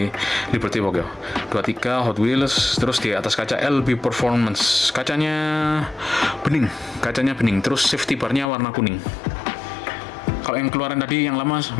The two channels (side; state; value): right; drops out; at 8.5 s